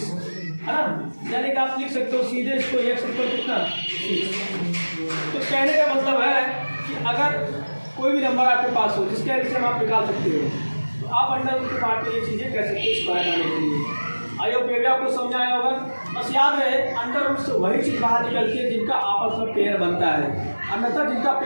है ना। यानी कि आप लिख सकते हो सीधे इसको एक्स इक्वल कितना 6। तो कहने का मतलब है कि अगर कोई भी नंबर आपके पास हो जिसके एलसीएम आप निकाल सकते हो, तो आप अंडर रूट के पार्ट में ये चीज़ें कह सकते हो स्क्वायर आने के लिए। आई होप ये भी आपको समझ आया होगा। बस याद रहे अंडर रूट से वही चीज़ बाहर निकलती है जिनका आपस में पेयर बनता है, अन्यथा जिनका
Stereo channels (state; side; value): inverted; both; correlation -1.00